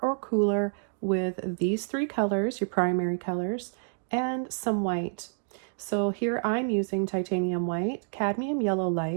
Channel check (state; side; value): silent; left; 59 dB below the other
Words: or cooler with these three colors, your primary colors, and some white. So here I'm using titanium white, cadmium yellow